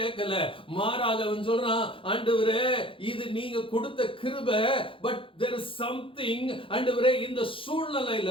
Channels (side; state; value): right; late; 0.25 ms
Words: மாறாக அவன் சொல்றான், ஆண்டவரே இது நீங்க கொடுத்த கிருபை, பட் there is something, ஆண்டவரே இந்த